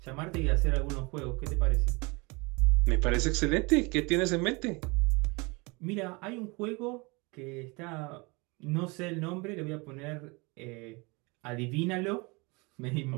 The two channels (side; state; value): left; quieter; 27.6 dB